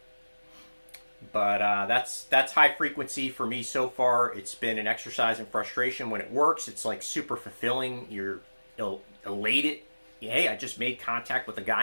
But that's high frequency for me so far. It's been an exercise in frustration. When it works, it's like super fulfilling. You're elated. Hey, I just made contact with a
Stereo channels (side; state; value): both; inverted; correlation -1.00